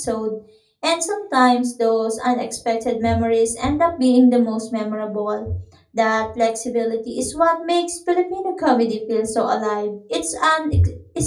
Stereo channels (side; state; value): both; identical; correlation 1.00